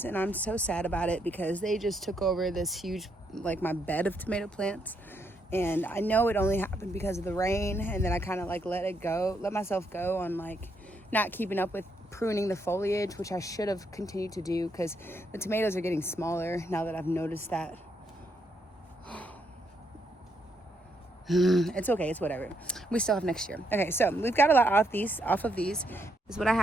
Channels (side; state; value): both; normal; correlation 0.77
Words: and I'm so sad about it because they just took over this huge, like, my bed of tomato plants. And I know it only happened because of the rain, and then I kind of like let myself go on like not keeping up with pruning the foliage, which I should have continued to do because the tomatoes are getting smaller now that I've noticed that. It's okay, it's whatever. We still have next year. Okay, so we've got a lot off of these. This is what I